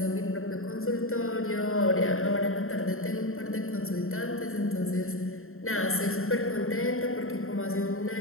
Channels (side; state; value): right; late; 0.61 ms